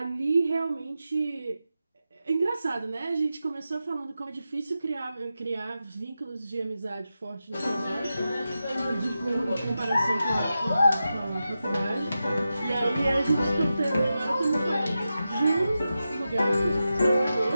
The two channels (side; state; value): both; inverted; correlation -0.91